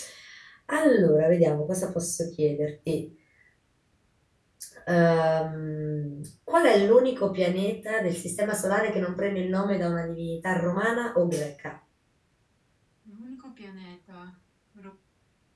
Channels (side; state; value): both; identical; correlation 1.00